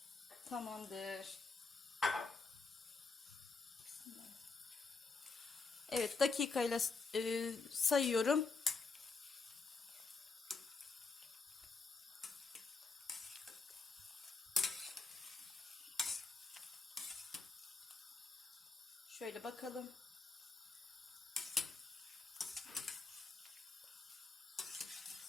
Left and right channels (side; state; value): right; quieter; 4.2 dB